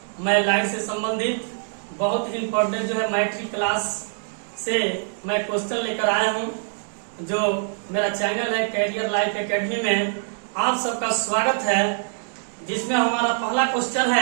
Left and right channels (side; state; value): left; silent; 63 dB below the other